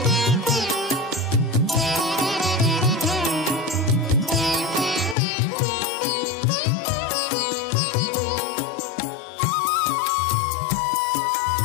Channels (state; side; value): drops out; right; at 5.2 s